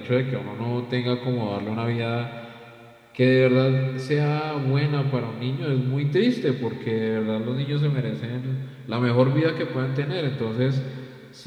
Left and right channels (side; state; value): both; identical; correlation 1.00